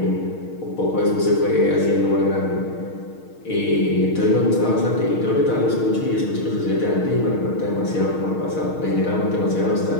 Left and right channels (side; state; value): right; late; 6.5 ms